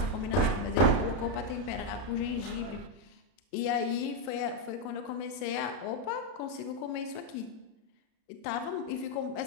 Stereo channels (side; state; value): right; late; 32 ms